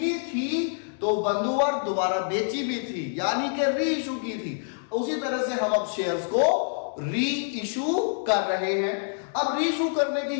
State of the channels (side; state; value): right; silent; digital silence